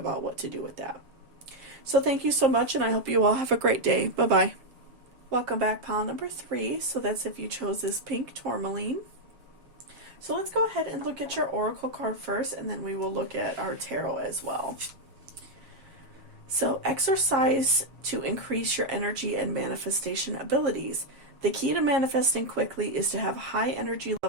what to do with that. So thank you so much, and I hope you all have a great day. Bye-bye. Welcome back, pile number 3. So that's if you chose this pink tourmaline. So let's go ahead and look at your oracle card first, and then we will look at our tarot as well. So exercise to increase your energy and manifestation abilities. The key to manifesting quickly is to have high energy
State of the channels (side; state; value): left; late; 7.4 ms